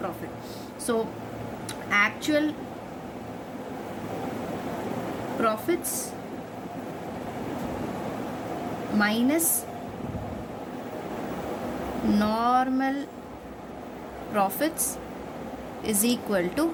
So actual profits minus normal profits is equal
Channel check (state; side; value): identical; both; correlation 1.00